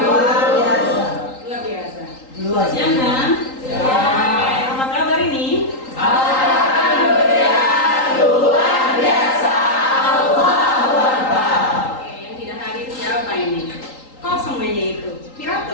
luar biasa. Luar biasa. Luar Siang kan? Ya. Apa kabar ini? Alhamdulillah luar biasa. Allahu Akbar. Oke, yang tidak hadir siapa ini? Kosong meja itu.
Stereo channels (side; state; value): right; late; 3.8 ms